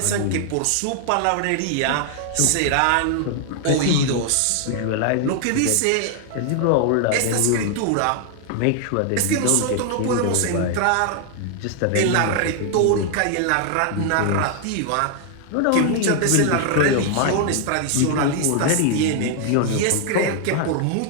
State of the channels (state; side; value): different; both; correlation 0.00